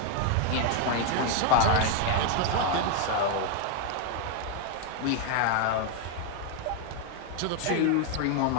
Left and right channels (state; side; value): different; both; correlation 0.01